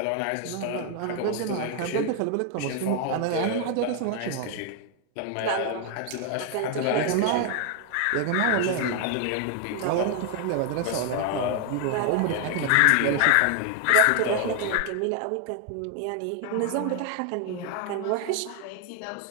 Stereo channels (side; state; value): both; different; correlation 0.00